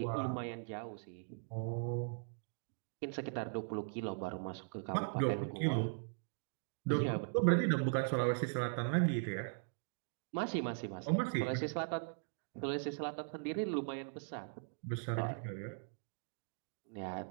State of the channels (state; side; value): silent; left; digital silence